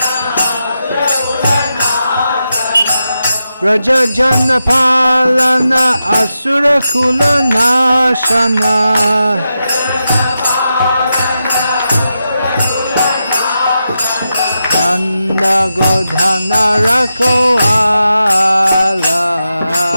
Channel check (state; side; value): inverted; both; correlation -0.89